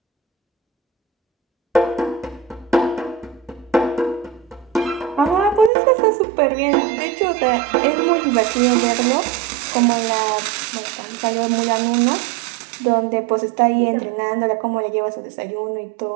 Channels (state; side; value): drops out; left; at 5.7 s